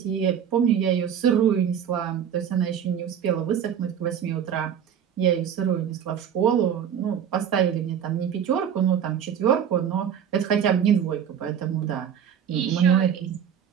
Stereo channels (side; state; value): left; quieter; 8.6 dB